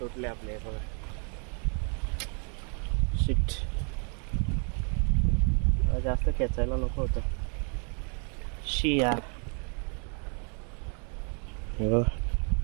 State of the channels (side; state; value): left; quieter; 39.9 dB